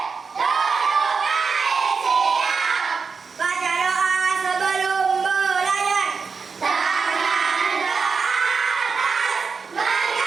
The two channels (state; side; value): quieter; left; 5.1 dB